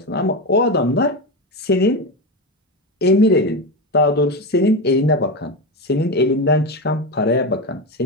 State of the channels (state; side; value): normal; both; correlation 0.16